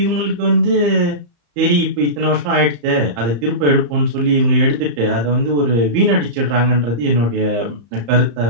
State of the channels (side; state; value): left; late; 35 ms